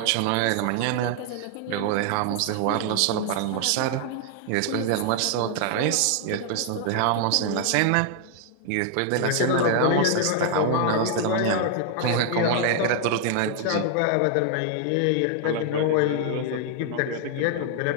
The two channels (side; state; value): both; different; correlation 0.00